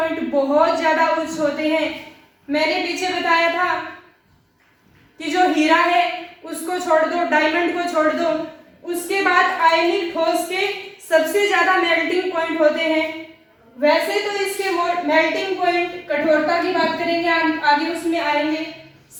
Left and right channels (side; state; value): both; identical; correlation 1.00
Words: बहुत ज्यादा उच्च होते हैं। मैंने पीछे बताया था कि जो हीरा है उसको छोड़ दो, डायमंड को छोड़ दो, उसके बाद आयनिक ठोस के सबसे ज्यादा मेल्टिंग पॉइंट होते हैं। वैसे तो इसके मेल्टिंग पॉइंट कठोरता की बात करेंगे आगे उसमें आएंगे।